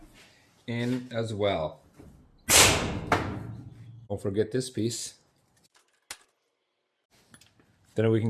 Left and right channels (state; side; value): identical; both; correlation 1.00